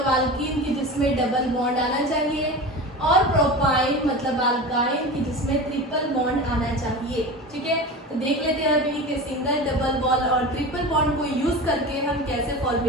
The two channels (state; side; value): normal; both; correlation 0.30